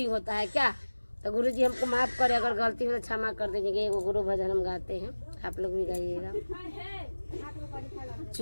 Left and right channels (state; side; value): inverted; both; correlation -1.00